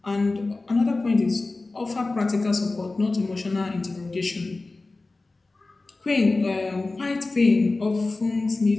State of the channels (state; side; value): quieter; right; 3.3 dB